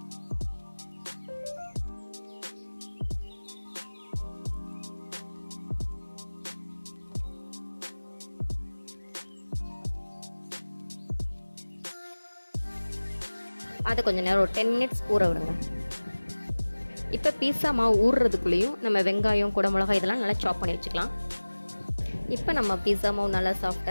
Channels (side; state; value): both; inverted; correlation -1.00